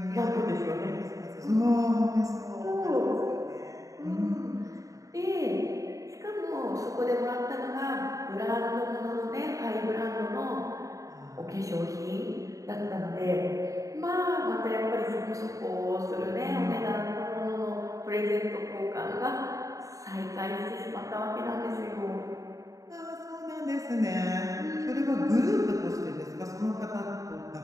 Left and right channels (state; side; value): late; left; 0.16 ms